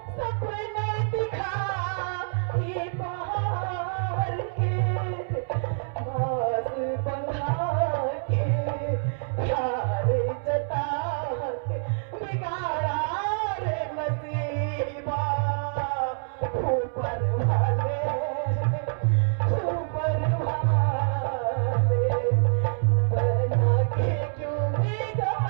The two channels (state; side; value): silent; left; 61 dB below the other